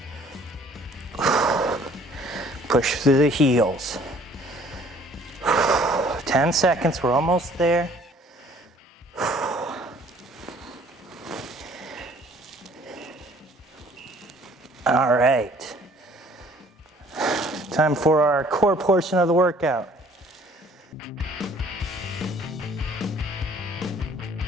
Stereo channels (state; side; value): normal; both; correlation 0.56